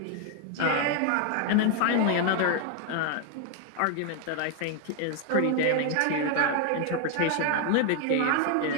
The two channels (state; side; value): different; both; correlation 0.00